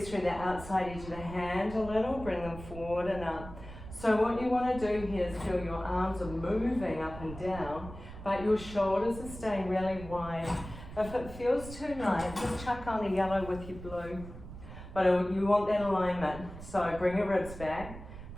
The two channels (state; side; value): noise; right; rumble, 13 dB below the sound